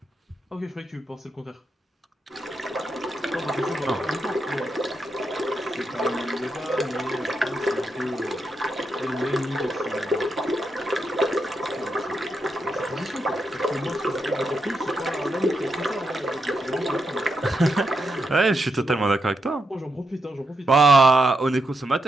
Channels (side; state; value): both; normal; correlation 0.84